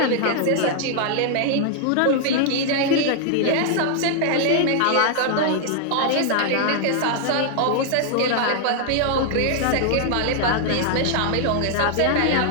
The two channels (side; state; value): both; different; correlation 0.00